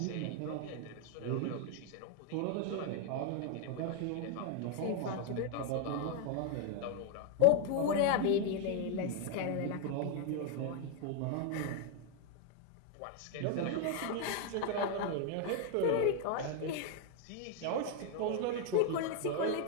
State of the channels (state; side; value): different; both; correlation 0.01